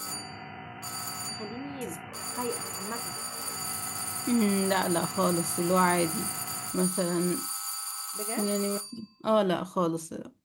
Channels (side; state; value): both; identical; correlation 1.00